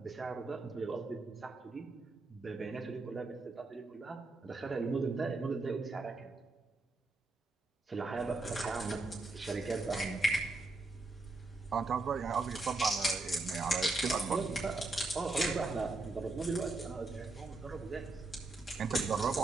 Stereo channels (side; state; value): left; quieter; 3.1 dB